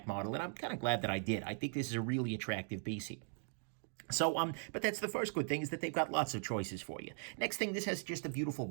model, and I'm kind of glad that I did. I think this is a really attractive piece here. So, but that's the first good thing, is that they've got lots of choices for you. Next thing, this has just a beautiful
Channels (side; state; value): left; silent; 52 dB below the other